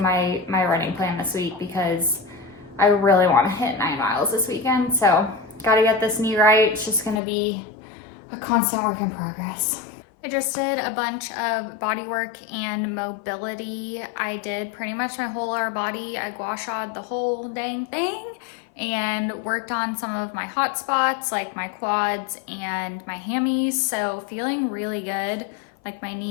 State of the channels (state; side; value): drops out; right; at 7.2 s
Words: running plan this week, because I really want to hit 9 miles this weekend. So gotta get this knee right. It's just gonna be a constant work in progress. I just did a bunch of body work and mobility. I did pretty much my whole lower body. I gua sha'd the whole dang thing and worked on some of my hot spots like my quads and my hammies. So feeling really good. Like my